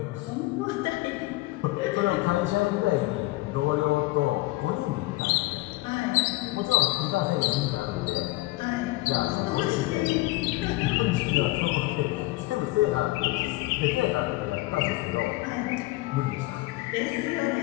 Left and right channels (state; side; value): quieter; right; 20.3 dB